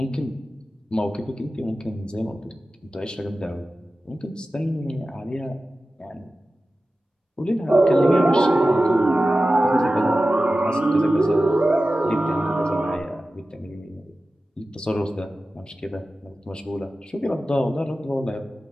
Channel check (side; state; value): both; normal; correlation 0.95